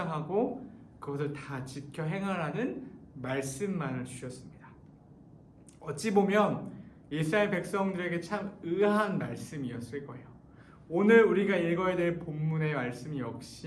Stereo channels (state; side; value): identical; both; correlation 1.00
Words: 그것을 다 지켜 행하라는 말씀만을 주셨습니다. 어찌 보면 이스라엘 백성들에게 참 의아한 말씀이었을 거예요. 오늘 우리가 읽어야 될 본문의 말씀